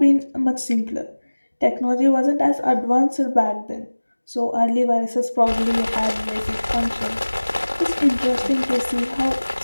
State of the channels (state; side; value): inverted; both; correlation -1.00